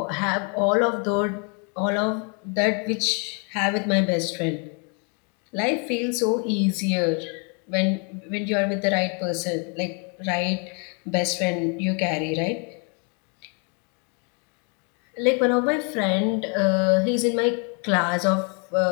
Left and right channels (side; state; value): right; quieter; 36.6 dB